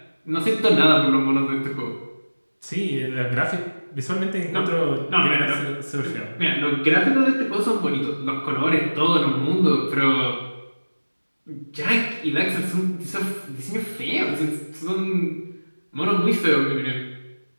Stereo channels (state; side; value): inverted; both; correlation -1.00